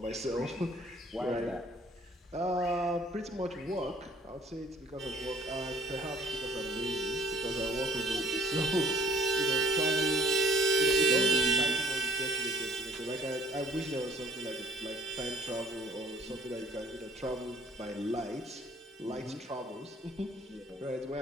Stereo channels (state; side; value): normal; both; correlation 0.56